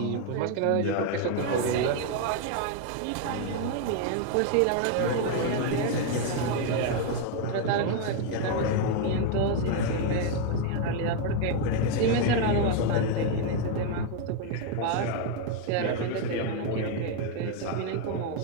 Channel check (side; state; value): both; different; correlation 0.01